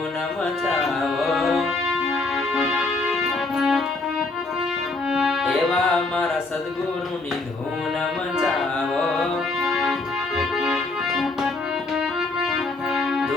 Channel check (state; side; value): quieter; right; 3.3 dB